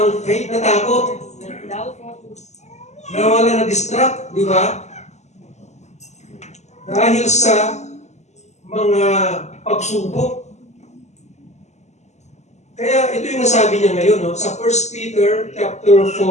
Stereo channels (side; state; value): right; late; 0.33 ms